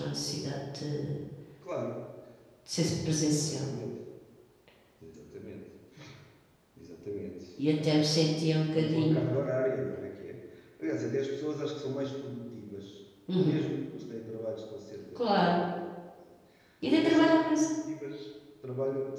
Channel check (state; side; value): identical; both; correlation 1.00